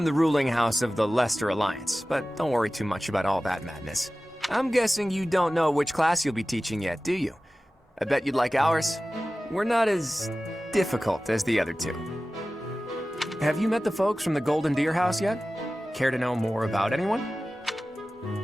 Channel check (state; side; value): normal; both; correlation 0.96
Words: the ruling house of the Leicester Alliance, but don't worry too much about all that madness. I'm guessing you don't know which class you'll be teaching yet, do you? I bet you'd like ours. We're not as difficult as the other two. Have you met the folks from the Golden Deer House yet? Care to know more about anyone?